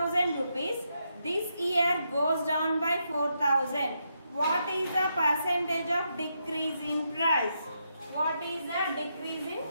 rupees. This year goes down by 4000. What is the percentage of decrease in price? What is the decrease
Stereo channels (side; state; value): both; inverted; correlation -0.81